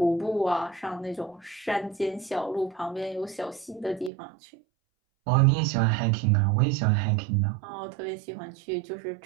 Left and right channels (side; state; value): left; drops out; at 4.1 s